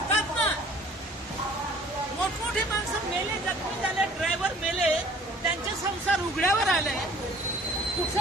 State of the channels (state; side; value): normal; both; correlation 0.52